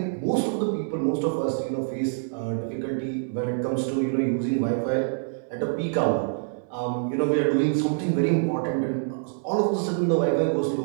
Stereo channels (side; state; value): left; silent; digital silence